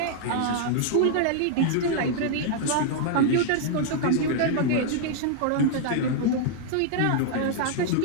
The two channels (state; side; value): different; both; correlation -0.01